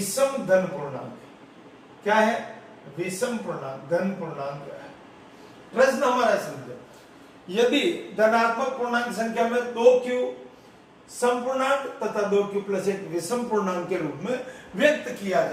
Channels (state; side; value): identical; both; correlation 1.00